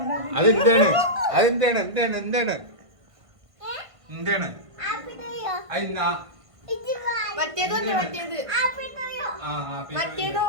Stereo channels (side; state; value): left; late; 1.5 ms